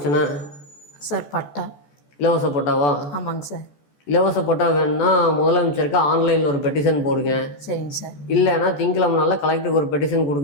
சார் பட்டா இலவச பட்டாவா? ஆமாங்க சார். இலவச பட்டா வேணும்னா முதலமைச்சருக்கு ஆன்லைனில் ஒரு பெட்டிஷன் போடுங்க. சரிங்க சார். இல்லைன்னா திங்கக்கிழமை நாளில் கலெக்டருக்கு ஒரு பெட்டிஷன்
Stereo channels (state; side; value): late; right; 14 ms